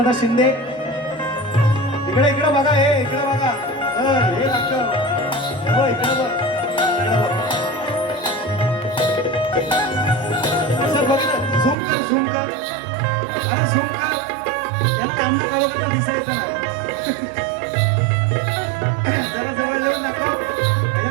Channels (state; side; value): drops out; left; at 11.8 s